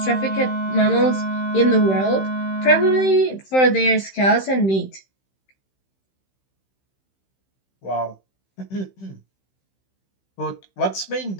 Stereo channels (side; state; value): right; late; 15 ms